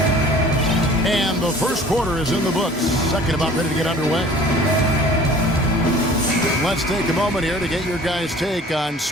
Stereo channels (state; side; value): normal; both; correlation 0.48